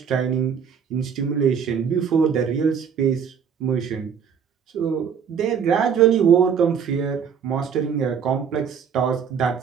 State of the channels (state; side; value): quieter; left; 7.2 dB